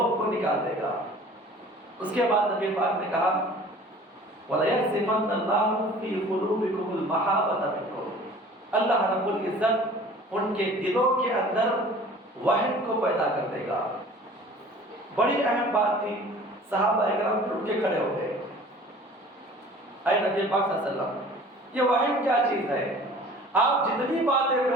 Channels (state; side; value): normal; both; correlation 0.47